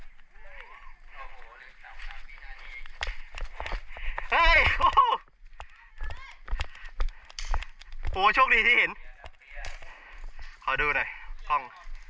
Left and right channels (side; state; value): both; identical; correlation 1.00